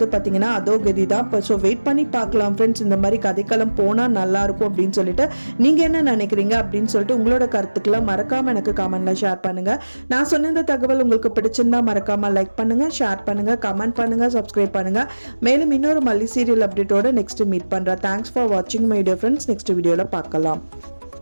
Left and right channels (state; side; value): inverted; both; correlation -1.00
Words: பாத்தீங்கன்னா அதோ கதி தான். ஸோ வெயிட் பண்ணி பார்க்கலாம் ஃப்ரெண்ட்ஸ், இந்த மாதிரி கதைக்களம் போனா நல்லா இருக்கும் அப்படின்னு சொல்லிட்டு நீங்க என்ன நினைக்கிறீங்க அப்படின்னு சொல்லிட்டு உங்களோட கருத்துக்களை மறக்காம எனக்கு கமெண்ட்ல ஷேர் பண்ணுங்க. நான் சொன்ன இந்த தகவல் உங்களுக்கு பிடிச்சிருந்தா மறக்காம லைக் பண்ணுங்க, ஷேர் பண்ணுங்க, கமெண்ட் பண்ணுங்க, சப்ஸ்கிரைப் பண்ணுங்க. மேலும் இன்னொரு மல்லி சீரியல் அப்டேட்டோட நெக்ஸ்ட் மீட் பண்றேன். தேங்க்ஸ் ஃபார் வாட்சிங் மை டியர் ஃப்ரெண்ட்ஸ். நெக்ஸ்ட் வீடியோல பார்க்கலாம்.